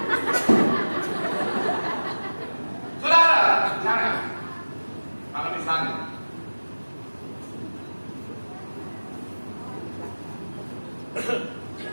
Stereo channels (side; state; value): both; inverted; correlation -1.00